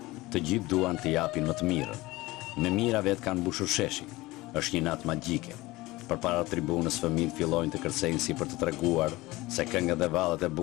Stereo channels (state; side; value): quieter; right; 20.0 dB